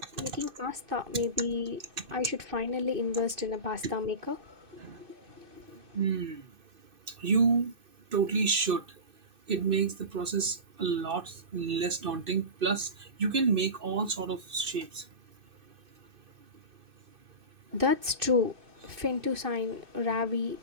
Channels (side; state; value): left; late; 2.6 ms